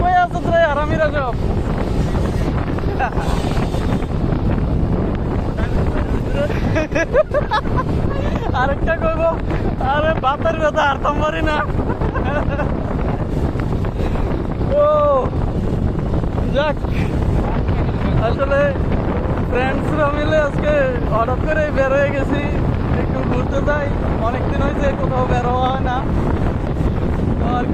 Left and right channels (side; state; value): both; identical; correlation 1.00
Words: কই আছে তোরা আরামিরা সব আরেকটা কইব আরে বাতের ব্যথা হারতাম পারি না ও যাক আসলে ফ্রেন্ডসরা মিলে আজকে হঠাৎ করে বের হয়ে গেছি একটু ঘুরতে যাই অনেকদিন হয়েছে কোথাও বের হওয়া হয় না তো আর